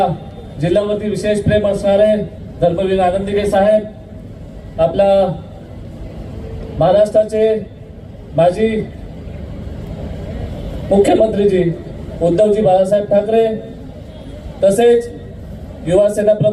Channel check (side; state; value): both; identical; correlation 1.00